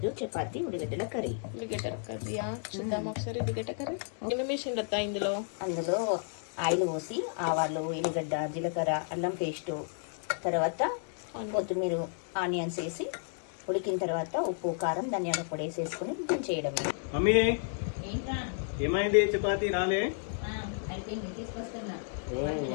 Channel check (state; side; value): silent; right; digital silence